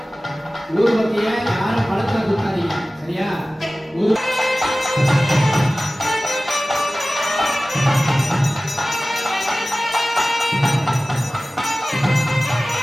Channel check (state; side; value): normal; both; correlation 0.97